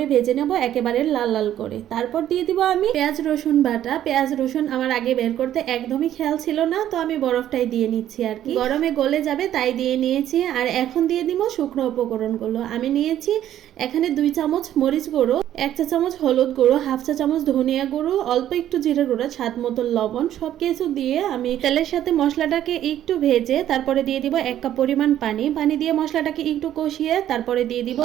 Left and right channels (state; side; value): quieter; left; 11.7 dB